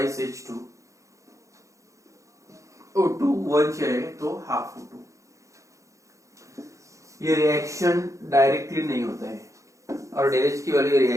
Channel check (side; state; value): left; late; 0.15 ms